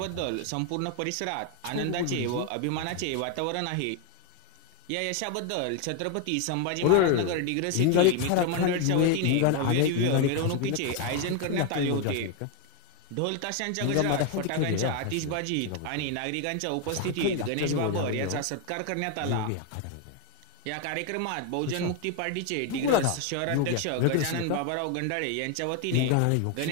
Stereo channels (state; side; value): different; both; correlation 0.01